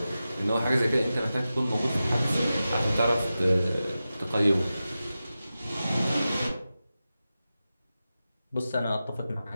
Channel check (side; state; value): both; inverted; correlation -0.93